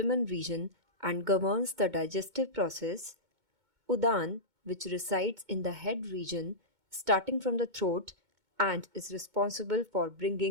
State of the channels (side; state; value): left; late; 2.2 ms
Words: region and governs the digestive process; Udana, which resides in the head region starting from the throat and is responsible for